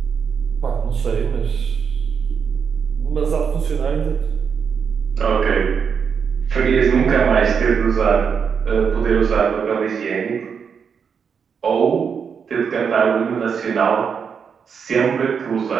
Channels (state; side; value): quieter; left; 6.6 dB